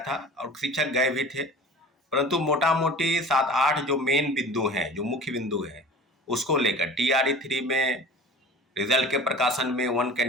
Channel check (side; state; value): both; normal; correlation 0.39